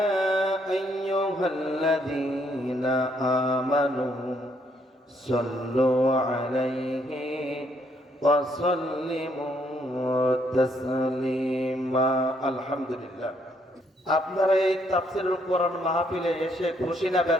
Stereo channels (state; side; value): normal; both; correlation 0.71